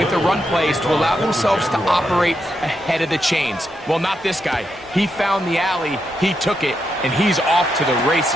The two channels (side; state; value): both; normal; correlation 0.83